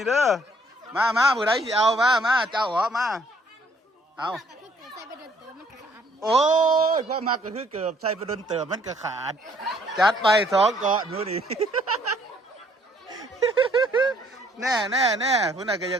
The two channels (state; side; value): normal; both; correlation 0.63